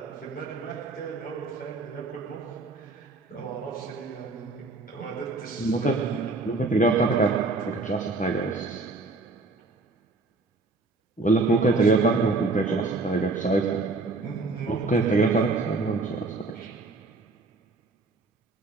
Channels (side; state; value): left; quieter; 3.2 dB